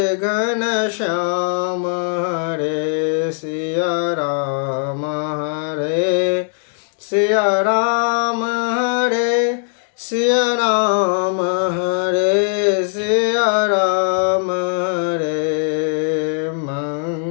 घनश्याम हरे सिया राम हरे सिया राम हरे सिया राम हरे सिया राम हरे।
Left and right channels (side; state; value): right; silent; digital silence